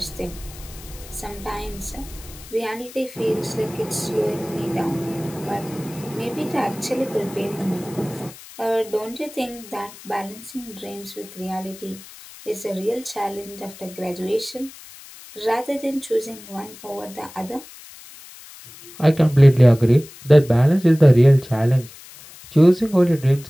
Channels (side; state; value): left; noise; hiss, 18 dB below the sound